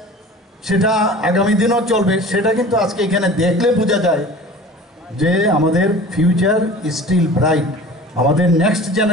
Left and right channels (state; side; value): normal; both; correlation 0.41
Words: সেটা আগামী দিনও চলবে। সেটা কিন্তু আজকে এখানে দেখলে বোঝা যায় যে আমাদের ফিউচার স্টিল ব্রাইট। আমাদের নেক্সট